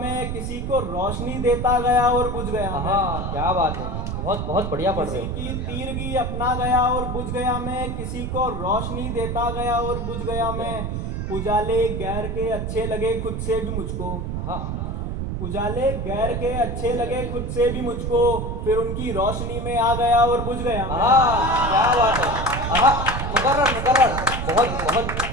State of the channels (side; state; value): right; noise; rumble, 3 dB below the sound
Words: किसी को रोशनी देता गया और बुझ गया मैं। आहा, क्या बात है, बहुत बहुत बढ़िया पढ़ रहे किसी हो। की तीरगी अपना गया और बुझ गया मैं, किसी को रोशनी देता गया और बुझ गया मैं, उजाले गैर के अच्छे लगे खुद से भी मुझको, आहा, उजाले गैर के अच्छे लगे खुद से भी मुझको, फिर उनकी रोशनी में आ गया और बुझ गया मैं। आहा, क्या बात है। आहा, मुकर्रर मुकर्रर, बहुत बहुत